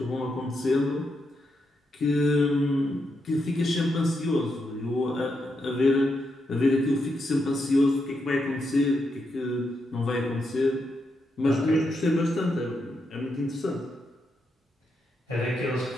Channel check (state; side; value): normal; both; correlation 0.83